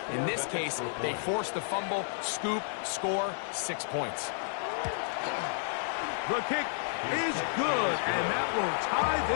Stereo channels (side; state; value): right; silent; digital silence